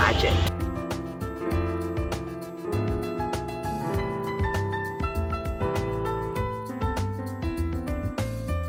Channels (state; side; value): identical; both; correlation 1.00